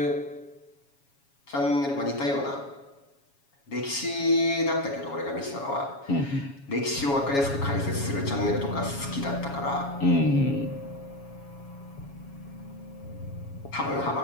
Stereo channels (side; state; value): right; late; 7.2 ms